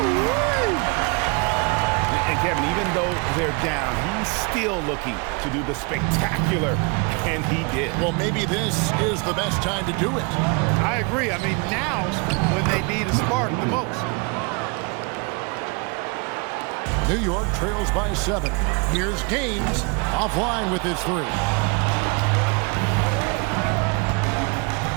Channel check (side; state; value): left; quieter; 32.0 dB